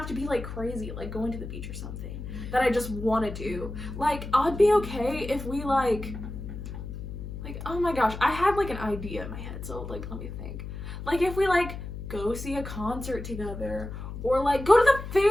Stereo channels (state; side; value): noise; left; hum, 8 dB below the sound